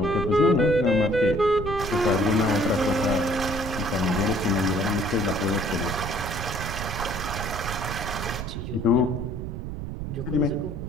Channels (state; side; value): noise; right; rumble, 6 dB below the sound